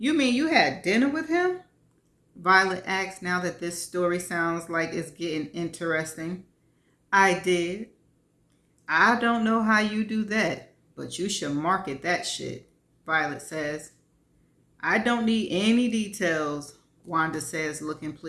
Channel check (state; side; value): identical; both; correlation 1.00